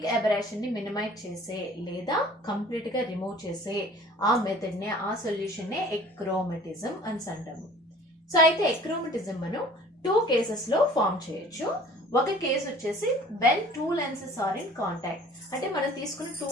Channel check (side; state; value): both; normal; correlation 0.49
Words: aberration ని మినిమైజ్ చేసే లేదా కంప్లీట్ గా రిమూవ్ చేసే ఆ మెథడ్ నే, ఆ సొల్యూషన్ నే ఎక్రోమటిజం అని అంటాము. సో అయితే ఎక్రోమటిజం మనం 2 కేసెస్ లో ఫామ్ చేయొచ్చు. ఒక కేసు వచ్చేసి when 2 lenses are in contact, అంటే మనం తీసుకున్న 2